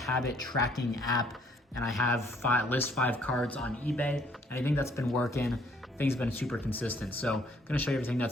tracking app, and I have list 5 cards on eBay, and I think that's been working. Things have been super consistent. So I'm gonna show you everything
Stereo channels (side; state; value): both; normal; correlation 0.63